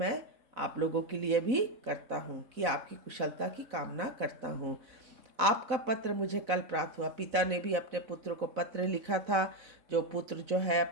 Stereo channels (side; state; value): left; late; 4.1 ms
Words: आप लोगों के लिए भी करता हूँ कि आपकी कुशलता की कामना करता हूँ। आपका पत्र मुझे कल प्राप्त हुआ। पिता ने भी अपने पुत्र को पत्र लिखा था। जो पुत्र जो है